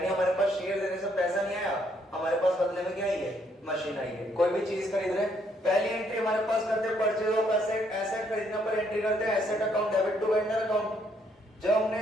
हमारे पास शेयर देने से पैसा नहीं आया, हमारे पास बदले में क्या आई है? मशीन आई है। कोई भी चीज खरीद रहे, पहली एंट्री हमारे पास करते हैं परचेज ऑफ एसेट, एसेट खरीदने पर एंट्री करते हैं asset account debit to vendor account. जब हमने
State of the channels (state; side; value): normal; both; correlation 0.70